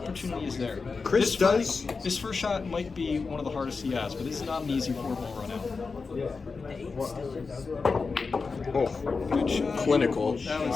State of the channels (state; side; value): quieter; right; 4.6 dB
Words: is there. Chris does. This first shot might be one of the hardest he has, but this is not an easy 4-ball run out. Oh, Good shot. clinical.